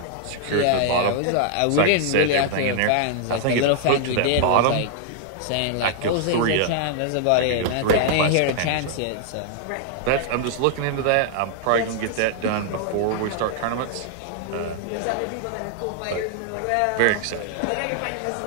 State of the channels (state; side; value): different; both; correlation -0.01